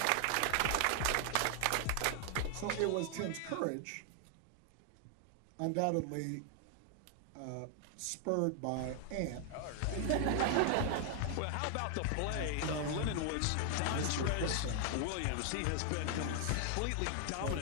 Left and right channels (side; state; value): both; different; correlation 0.00